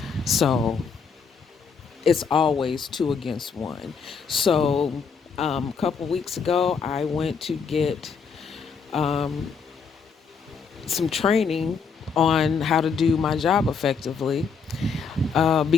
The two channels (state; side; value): quieter; right; 5.7 dB